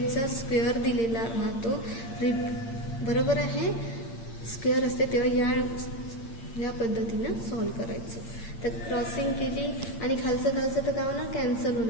स्क्वेअर दिलेला राहतो. बरोबर आहे, स्क्वेअर असते तेव्हा या पद्धतीनं सॉल्व करायचं. तर क्रॉसिंग केली आणि खालचं तर काय होणार, कॅन्सल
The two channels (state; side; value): late; right; 8.8 ms